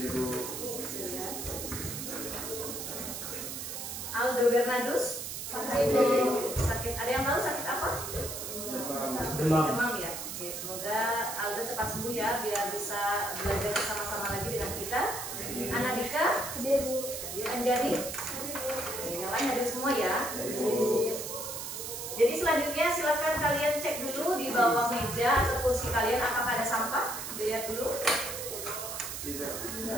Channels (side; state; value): right; noise; hiss, 6 dB below the sound